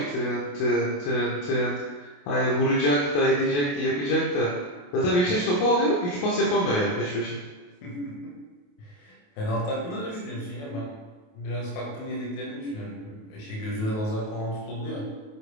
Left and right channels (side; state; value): right; late; 28 ms